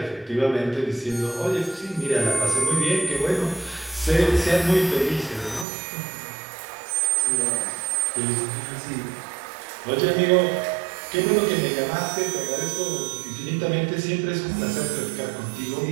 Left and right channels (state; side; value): drops out; left; at 5.7 s